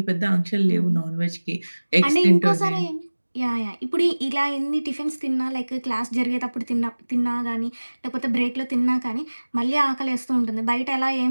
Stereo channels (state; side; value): inverted; both; correlation -1.00